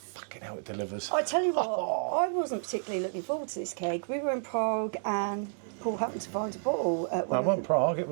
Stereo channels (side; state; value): left; silent; digital silence